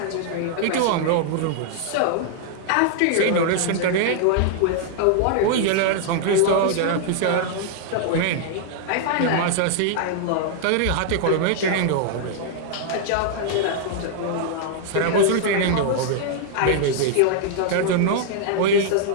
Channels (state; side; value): different; both; correlation -0.01